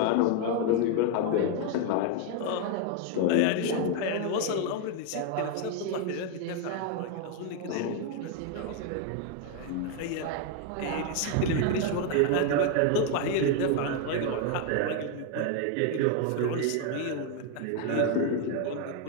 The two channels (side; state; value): both; different; correlation 0.01